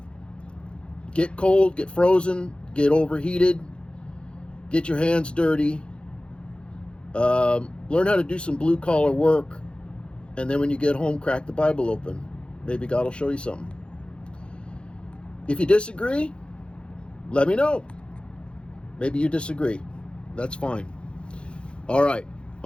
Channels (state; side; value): late; right; 0.056 ms